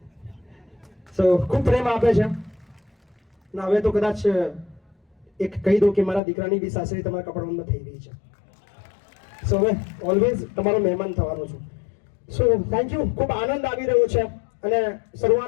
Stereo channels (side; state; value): right; drops out; at 6.2 s